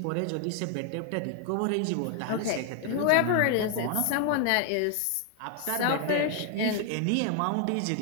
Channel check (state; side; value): different; both; correlation 0.00